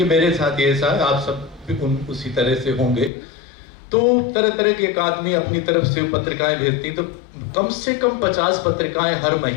मेरे साथ ये ऐसा है, आप सब भी उसी तरह से होंगे, तो तरह तरह के एक आदमी अपनी तरफ से पत्रिकाएं भेजती, तो कम से कम 50 पत्रिकाएं हर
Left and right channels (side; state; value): right; drops out; at 3.1 s